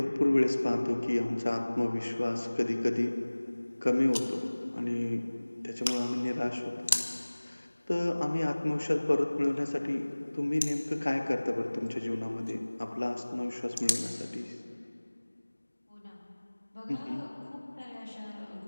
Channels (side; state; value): both; inverted; correlation -1.00